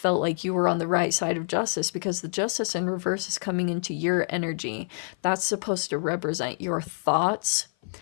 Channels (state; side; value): silent; right; 55 dB below the other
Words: like you were on the right side of justice because the justice in reverse is coming into your energy. That's supposed to represent your thoughts